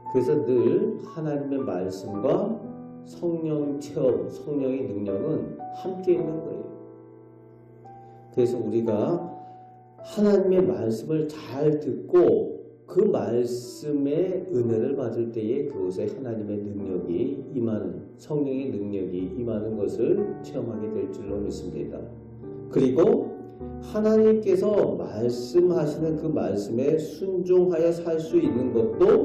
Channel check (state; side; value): identical; both; correlation 1.00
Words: 그래서 늘 하나님의 말씀과 성령 체험, 성령의 능력은 함께 있는 거예요. 그래서 우리가 하나님의 말씀을 잘 듣고 그 말씀의 은혜를 받을 때에 그곳에 하나님의 능력이 임하는, 성령의 능력이 임하는 것을 체험하게 될 줄로 믿습니다. 그리고 하나님께서 말씀하시는 그 말씀에 순종하여 살 수 있는